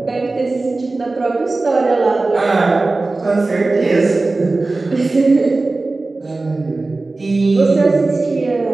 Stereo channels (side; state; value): left; quieter; 3.3 dB